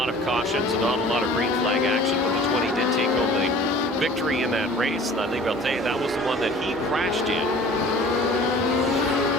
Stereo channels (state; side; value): normal; both; correlation 0.47